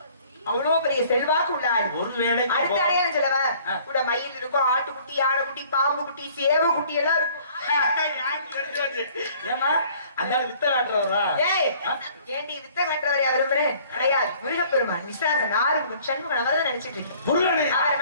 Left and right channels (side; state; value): both; inverted; correlation -0.55